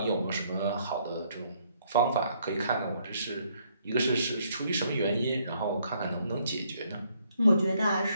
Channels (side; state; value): both; inverted; correlation -0.69